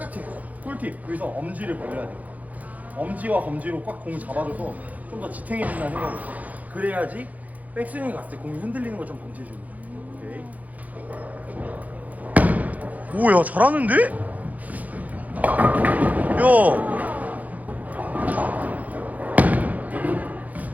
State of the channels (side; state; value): left; late; 0.077 ms